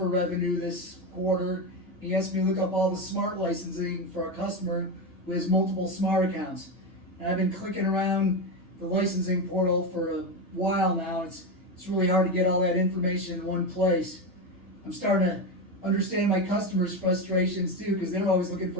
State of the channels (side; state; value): both; normal; correlation 0.15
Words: revenue this quarter. He asked me to look up all the smart licensing for a customer who has multiple smart accounts. And I've been clicking around the licensing portal for a while now. It's really hard to get all that information in one place. I'm starting to understand my customers' frustrations too, because they're always looking